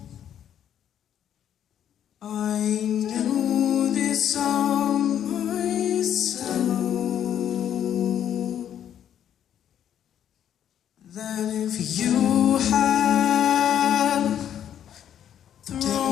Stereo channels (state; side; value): quieter; right; 9.9 dB